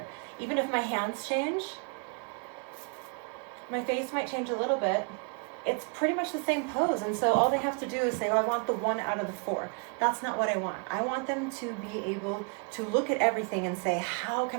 Even if my hands change, my face might change a little bit, it's pretty much the same pose. And so all they have to do is say, oh, I want the 1 out of the 4. That's not what I want. I want them to be able to look at everything and say, how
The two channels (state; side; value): quieter; left; 36.8 dB